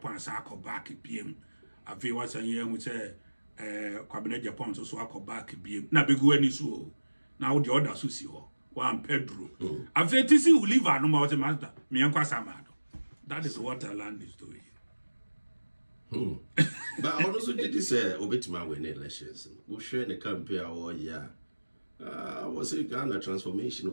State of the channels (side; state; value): both; inverted; correlation -1.00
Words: sako back PM. A few was a year who say Cabinet Japan so sako back PM. Na bigu any so. Now the other susio. One Pedro. A fetisi who live no more master. Me and Kwasamado. That is what our land is doing. But also did this Obetima win elections. We'll share the campaign all year. Was it Ghana transformation